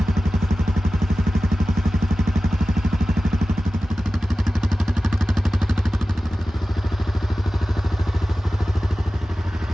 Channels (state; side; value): normal; both; correlation 0.96